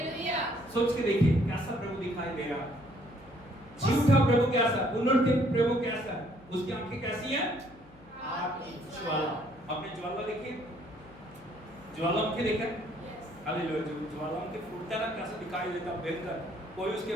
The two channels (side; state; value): left; noise; hum, 23 dB below the sound